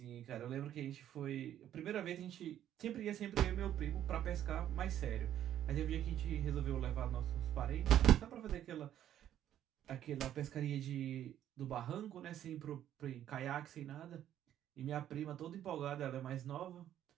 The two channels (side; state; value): left; quieter; 11.2 dB